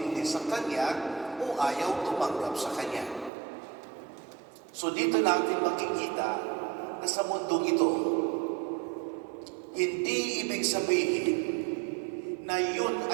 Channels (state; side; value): drops out; left; at 3.3 s